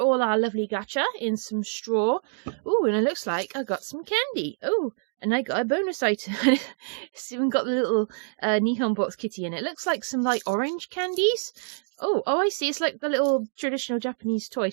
our lovely gacha in some straw. Ooh, and it looks like I got some candy. Oh, and I got a bonus item. It's even got the little Nihon Box kitty in it. It looks like some like orange candies. Oh, I see. It's like the little traditional Japanese toy.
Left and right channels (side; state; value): left; silent; digital silence